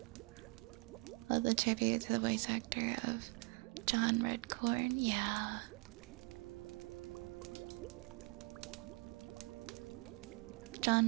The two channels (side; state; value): left; quieter; 27.6 dB